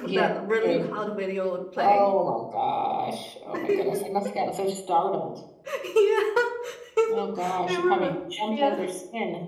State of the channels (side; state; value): both; identical; correlation 1.00